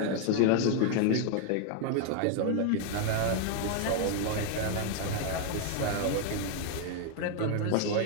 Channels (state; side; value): different; both; correlation 0.00